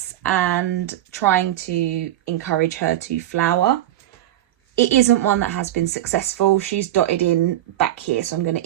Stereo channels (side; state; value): left; quieter; 13.2 dB